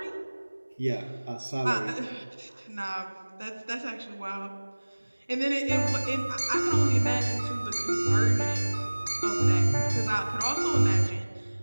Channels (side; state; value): both; inverted; correlation -1.00